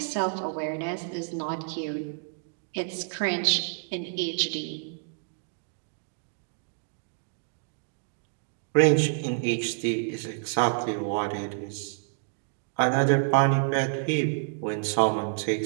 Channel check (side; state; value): left; silent; digital silence